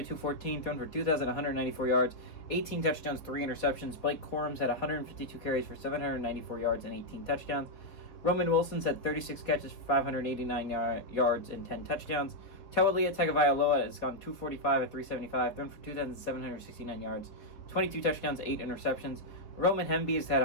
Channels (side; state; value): right; late; 3.9 ms